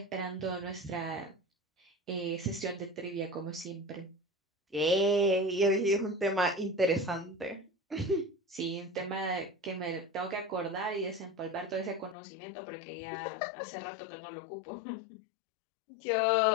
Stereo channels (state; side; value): drops out; right; at 12.2 s